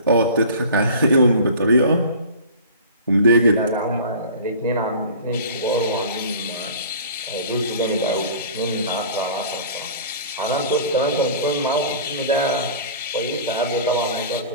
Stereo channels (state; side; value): inverted; both; correlation -0.40